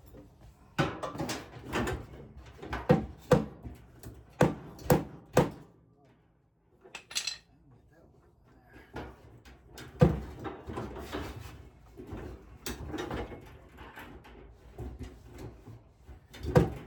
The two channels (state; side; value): identical; both; correlation 1.00